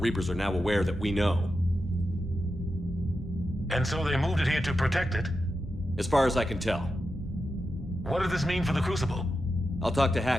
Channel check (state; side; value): normal; both; correlation 0.89